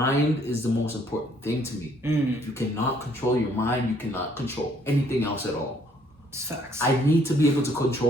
is the most important thing to me. If you cannot control your mind, you cannot control anything else at all. It's facts. I need to be able to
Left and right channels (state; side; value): normal; both; correlation 0.64